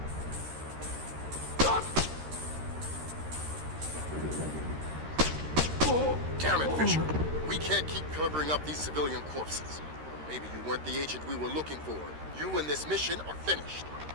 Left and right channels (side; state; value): left; late; 13 ms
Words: Damn it, Fisher. We can't keep covering up these civilian corpses. Maybe you weren't the agent we were looking for. You and this mission are finished.